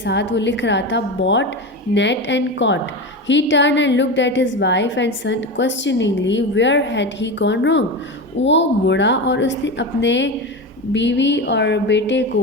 वो लिख रहा था bought, net and caught. He turn and looked at his wife and son questioningly where had he gone wrong. वो मुड़ा और उसने अपने बीवी और बेटे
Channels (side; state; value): both; normal; correlation 0.22